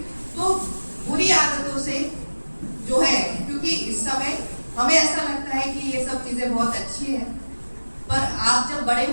तो बुरी आदतों से जो है, क्योंकि इस समय हमें ऐसा लगता है कि ये सब चीजें बहुत अच्छी है, पर आप जब बड़े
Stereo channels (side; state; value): both; inverted; correlation -1.00